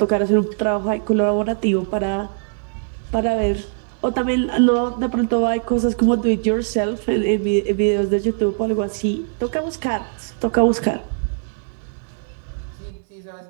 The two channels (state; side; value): silent; left; 65 dB below the other